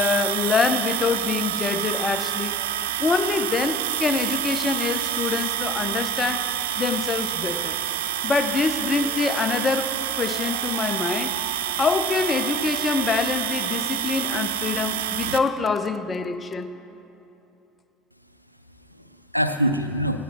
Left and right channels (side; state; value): both; normal; correlation 0.34